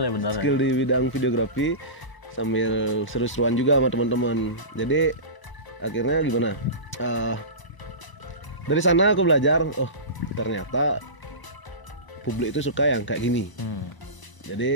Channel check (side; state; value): right; late; 1.0 ms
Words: Skill di bidang videografi sambil seru-seruan juga sama teman-teman. Jadi akhirnya gimana? Dari sana aku belajar, oh ternyata publik itu suka yang kayak gini.